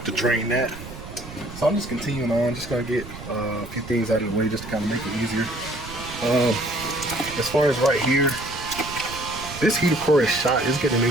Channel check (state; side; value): noise; right; rumble, 14 dB below the sound